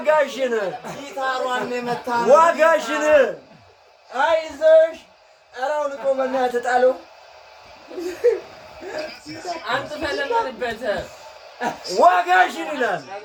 ጊታሯን የመታ ዋጋሽን አይዞሽ። ኧረ አሁን እኮ በእናትህ ጣለው። አንተ ፈለማንበት ዋጋሽን ይላል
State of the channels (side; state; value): both; identical; correlation 1.00